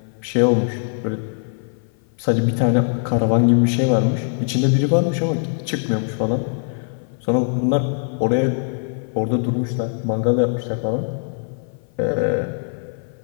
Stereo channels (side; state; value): right; silent; 56 dB below the other